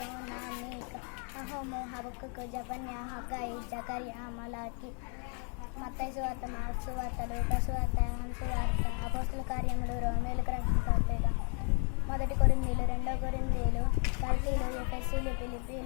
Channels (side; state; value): right; quieter; 39.3 dB